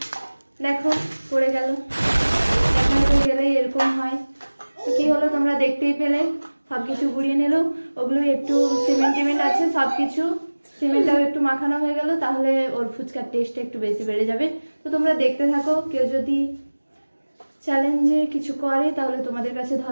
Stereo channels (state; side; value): inverted; both; correlation -1.00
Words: দেখো পড়ে গেল, দেখাতে গেলে এরকম হয়। তো কি হলো তোমরা দেখতেই পেলে, সবকিছু গুড়িয়ে নিল। ওগুলো একটু সিমেন্ট আছে, সবকিছু সিমেন্টটাও একটু মাখানো হয়ে গেল, তাহলে ওর ফুচকার টেস্টটা একটু বেশি বেড়ে যাবে। তো তোমরা দেখতে থাকো, কেউ যদি চ্যালেঞ্জে কিছু করে তাহলে তোমাদের কাছে